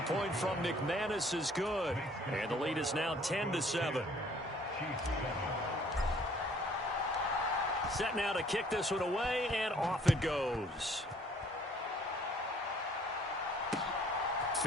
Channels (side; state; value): both; normal; correlation 0.58